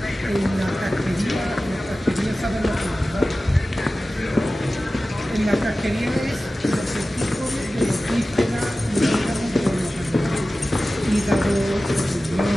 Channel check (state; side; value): normal; both; correlation 0.96